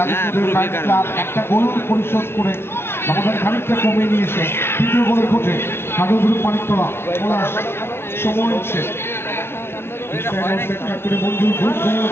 একটা গোল পরিশোধ করে ব্যবধান খানিকটা কমে নিয়েছে তৃতীয় গোলের খোঁজে কাজল গ্রুপ মানিকতলা পলাশ সময় হচ্ছে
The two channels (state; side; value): late; right; 0.12 ms